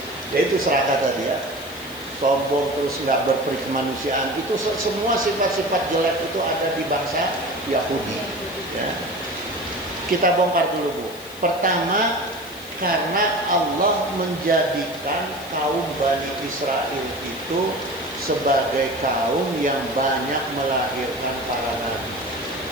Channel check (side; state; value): left; noise; hiss, 17 dB below the sound